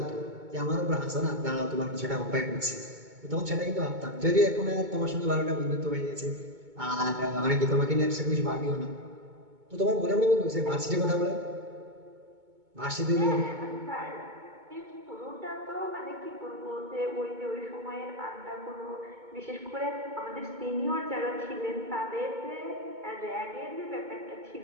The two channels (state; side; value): late; left; 2.2 ms